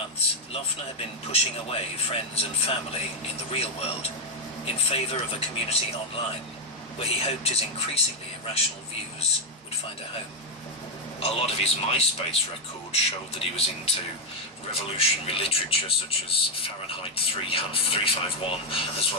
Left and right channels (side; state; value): both; normal; correlation 0.04